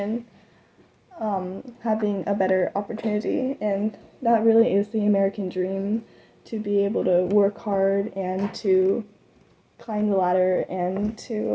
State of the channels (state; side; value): identical; both; correlation 1.00